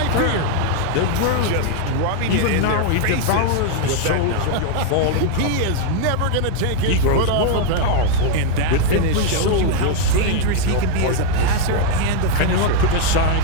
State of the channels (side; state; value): both; different; correlation 0.00